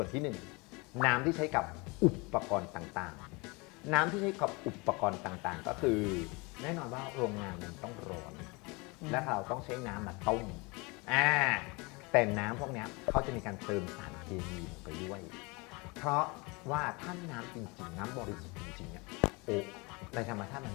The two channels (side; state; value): right; quieter; 27.3 dB